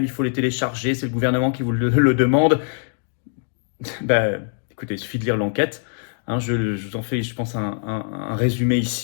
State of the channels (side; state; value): right; silent; digital silence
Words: il faut les télécharger, c'est le gouvernement qui vous le demande. Ben, écoutez, il suffit de lire l'enquête. Hein, je vous en fais, je pense, un résumé